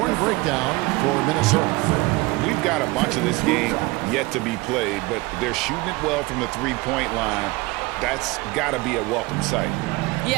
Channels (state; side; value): quieter; left; 22.3 dB